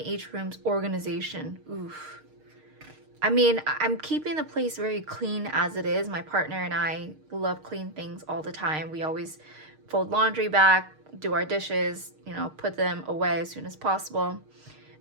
each room's organization? Oof. I mean, I'm keeping the place very clean as it is. My partner and I love clean things all the time. We always fold laundry back, do our dishes, you know, put them away as soon as possible.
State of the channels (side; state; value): left; late; 6.5 ms